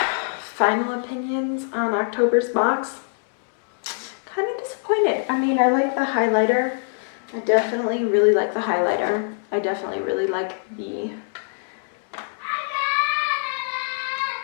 Final opinions on October's box. Kind of disappointed. I mean, I like the highlighter. I definitely really like the highlighter. I definitely really like the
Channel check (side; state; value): right; silent; digital silence